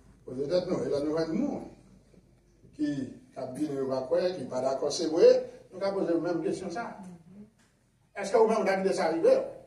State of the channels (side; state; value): both; identical; correlation 1.00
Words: poser tête nous. Et là, nous avons un monde qui a bien qui n'est pas d'accord, c'est vrai, nous avons posé la même question ça. Est-ce que vous-même, vous avez quitté ça arriver?